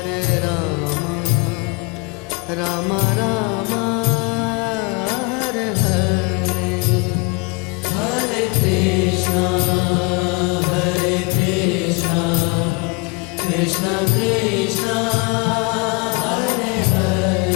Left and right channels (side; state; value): right; quieter; 28.5 dB